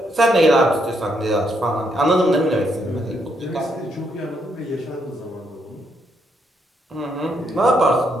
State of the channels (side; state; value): both; normal; correlation 0.76